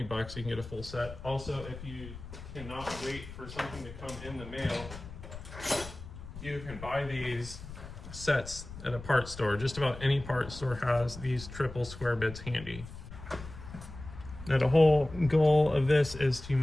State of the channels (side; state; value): left; noise; rumble, 13 dB below the sound